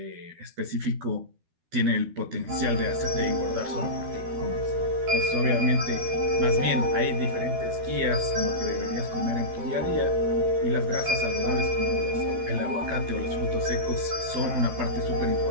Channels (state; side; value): late; left; 12 ms